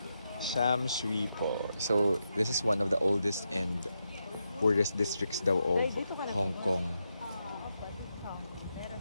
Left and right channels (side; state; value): both; inverted; correlation -0.85